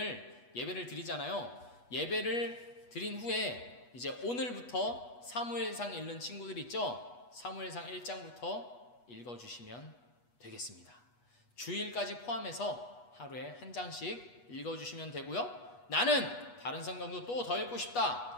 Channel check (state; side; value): late; right; 8.2 ms